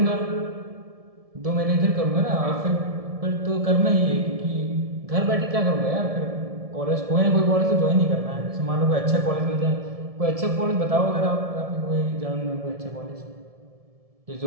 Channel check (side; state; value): left; late; 1.7 ms